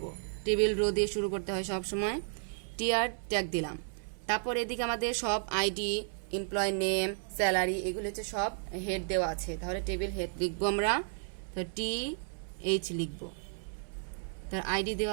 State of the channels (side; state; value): left; silent; 56 dB below the other